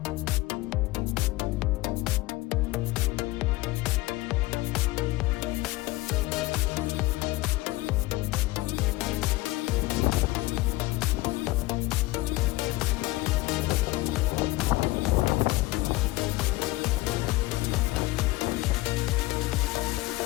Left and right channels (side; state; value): right; quieter; 19.8 dB